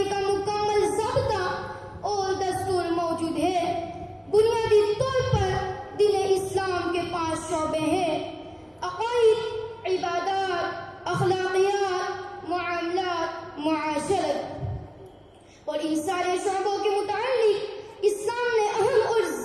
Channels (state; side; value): identical; both; correlation 1.00